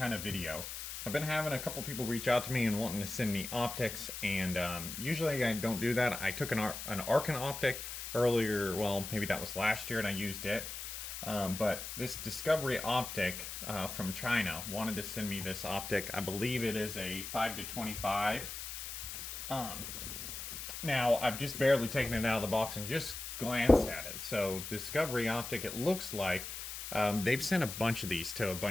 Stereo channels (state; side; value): noise; left; hiss, 7 dB below the sound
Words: of video. I've been having a couple people reach out to me and wanting to send me optics, and usually I don't do that. I took an Arcan optic earlier, well, maybe that was last year, and I used it. But this Discoveryopt from China wanted to send me this optic. I believe it is a 5-25. Now, I've just barely taken it out of the box and just glanced at it. So Discoveryopt, it looks like they've sent a bunch of these to a